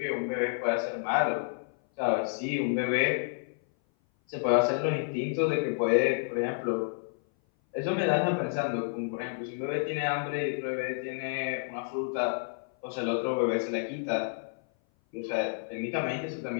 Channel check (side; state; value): right; silent; 57 dB below the other